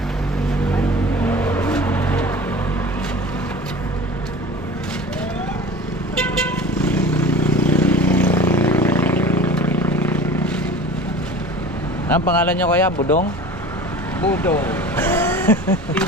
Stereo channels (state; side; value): normal; both; correlation 0.40